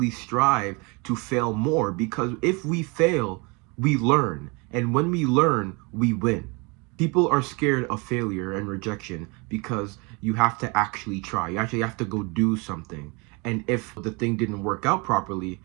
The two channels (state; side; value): quieter; left; 29.7 dB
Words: strive to fail more, because if we fail, we learn. And when we learn, we win. People are scared of failure and rejection because you have to actually try. You actually have to go do something. And if the thing didn't work out properly,